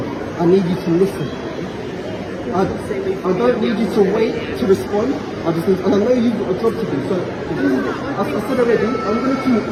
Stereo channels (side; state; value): both; identical; correlation 1.00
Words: I need you to listen. I don't need you to wait to respond. I just need, and I know you've got a job to do. So as I said already, I'm going